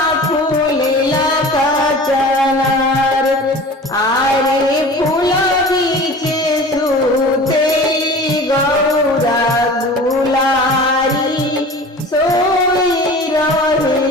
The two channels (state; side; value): normal; both; correlation 0.39